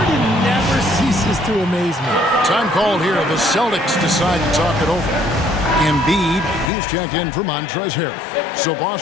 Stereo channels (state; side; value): drops out; right; at 6.7 s